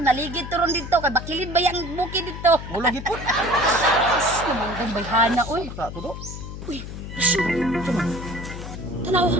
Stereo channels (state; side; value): noise; left; hum, 10 dB below the sound